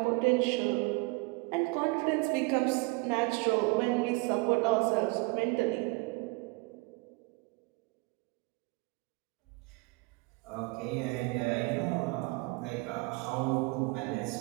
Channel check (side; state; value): left; quieter; 26.4 dB